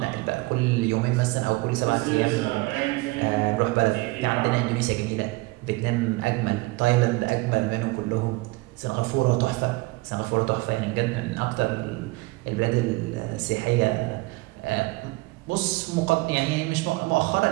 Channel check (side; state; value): left; quieter; 22.8 dB